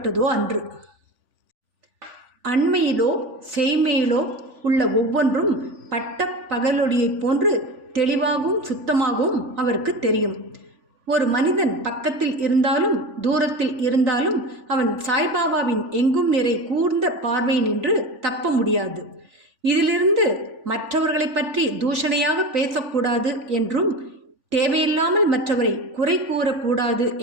அன்று. அண்மையிலோ செய்மையிலோ உள்ள ஒவ்வொன்றும் பட்ட பகலொளியைப் போன்று தெளிவாகவும் சுத்தமாகவும் அவருக்கு தெரியும். ஒரு மனிதன் பக்கத்தில் இருந்தாலும் தூரத்தில் இருந்தாலும் அவன் சாய்பாபாவின் எங்கும் நிறை கூர்ந்த பார்வை நின்று தப்ப முடியாது. இதிலிருந்து மற்றவர்களை பற்றி தூஷணையாக பேசக்கூடாது என்றும் தேவையில்லாமல் மற்றவரை குறை கூறக்கூடாது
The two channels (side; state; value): left; late; 3.9 ms